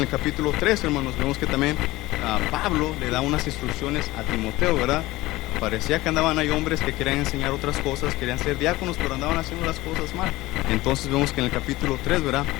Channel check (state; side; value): quieter; right; 18.9 dB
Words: capítulo 3, hermanos, vemos que también Pablo le da unas instrucciones a Timoteo, ¿verdad? Parecía que andaban ahí hombres que querían enseñar otras cosas, querían ser diáconos, pero andaban haciendo las cosas mal. Entonces vemos que en el capítulo 3, ¿verdad?